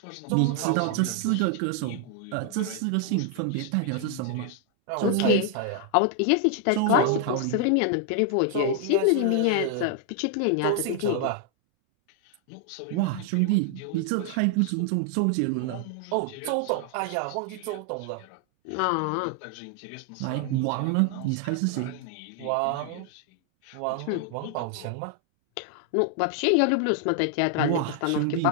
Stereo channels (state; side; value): different; both; correlation 0.00